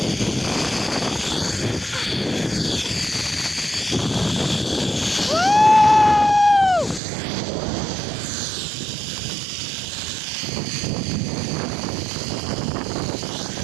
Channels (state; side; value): drops out; left; at 7.0 s